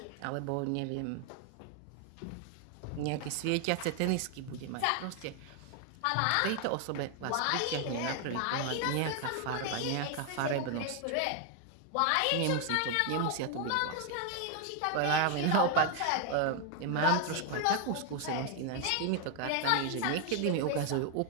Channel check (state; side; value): different; both; correlation 0.00